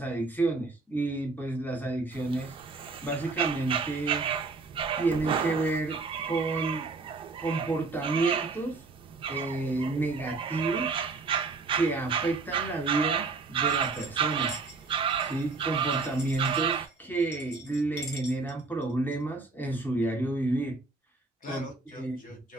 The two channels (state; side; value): quieter; left; 3.8 dB